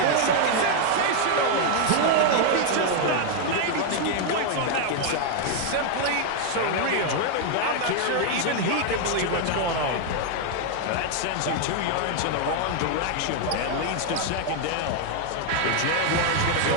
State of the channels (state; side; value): different; both; correlation 0.00